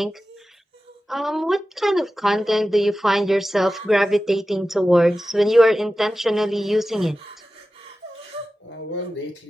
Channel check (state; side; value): normal; both; correlation 0.94